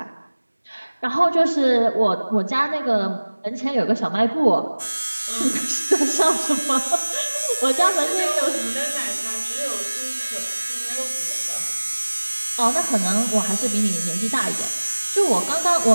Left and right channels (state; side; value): inverted; both; correlation -1.00